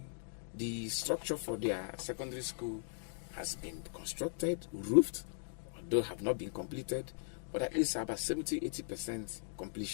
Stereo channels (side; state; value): right; silent; digital silence